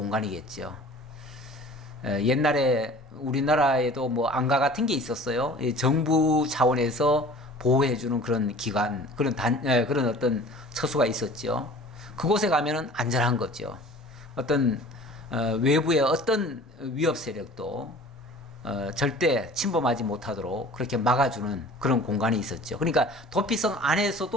옛날에 우리나라에도 뭐 안가 같은 게 있었어요. 정부 차원에서 보호해주는 그런 기관, 그런 어떤 처소가 있었죠. 그곳에 가면은 안전한 거죠. 어떤 외부의 어떤 위협 세력도 절대 침범하지 못하도록 그렇게 막아주는 그런 공간이 있었죠. 그러니까 도피성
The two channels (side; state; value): both; normal; correlation 0.45